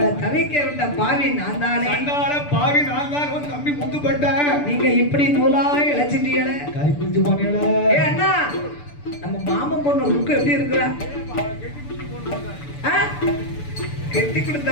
தவிக்க விட்ட பாவி நான் தானே. அண்ணால பாவி நான் தான். உன் தம்பி முத்துப்பட்ட. நீங்க இப்படி நூலா இழைச்சிட்டீங்களே, கறி குஞ்சு போனீங்களே. ஏ அண்ணா, நம்ம மாமன் பொண்ணு ருக்கு எப்படி இருக்கிறா? கெட்டி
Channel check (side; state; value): right; late; 6.9 ms